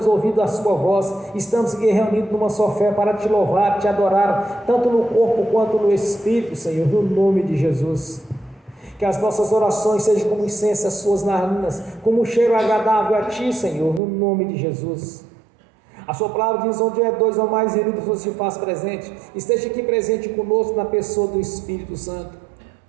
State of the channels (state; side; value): drops out; left; at 14.0 s